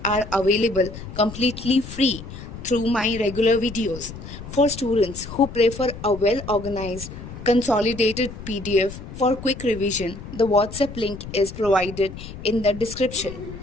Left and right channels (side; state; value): left; noise; rumble, 12 dB below the sound